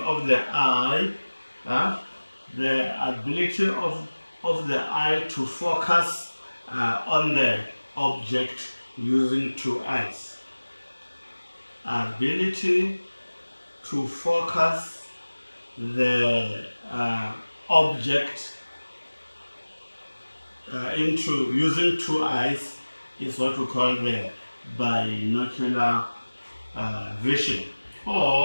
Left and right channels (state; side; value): inverted; both; correlation -1.00